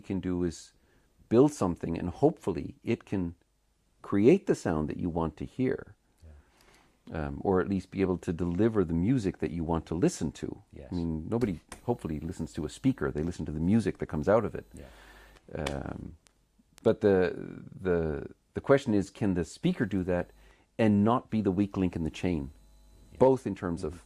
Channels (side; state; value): both; identical; correlation 1.00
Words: do is build something, and hopefully it can create the sound that you want to hear, or at least be able to deliver the music that you want to listen to. Yes. I mean, nobody hopefully listens to a speaker. They listen to the music that comes out of it. Yeah. But the question is, can the speaker do that and not be the weak link in the chain, both in terms of